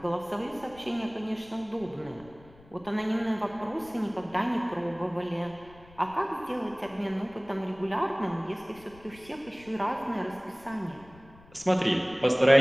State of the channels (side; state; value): left; noise; rumble, 23 dB below the sound